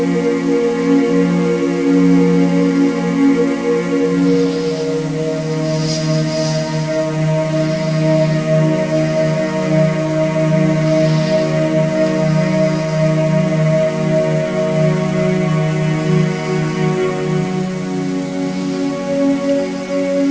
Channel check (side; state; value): both; identical; correlation 1.00